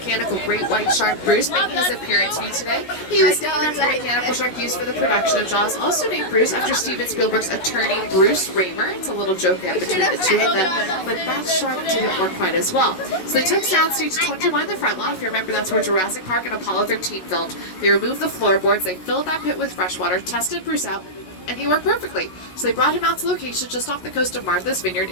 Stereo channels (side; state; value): right; late; 17 ms